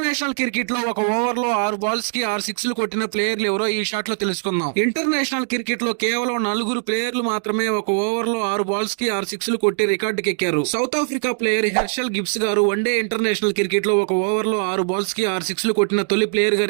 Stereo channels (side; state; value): left; silent; digital silence